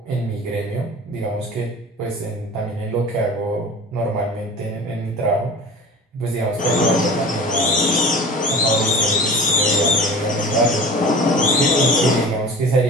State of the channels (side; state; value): both; normal; correlation 0.38